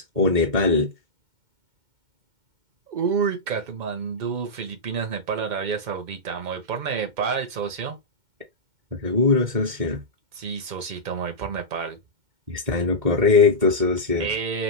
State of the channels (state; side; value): late; left; 2.1 ms